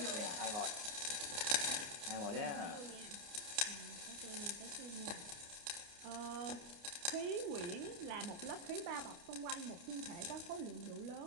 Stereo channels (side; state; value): left; late; 29 ms